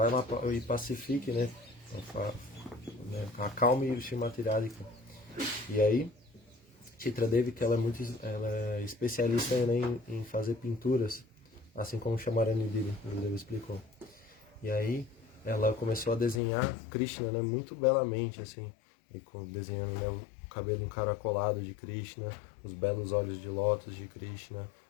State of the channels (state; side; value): drops out; right; at 16.4 s